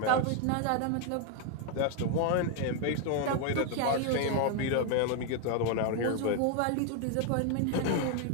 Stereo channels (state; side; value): different; both; correlation 0.00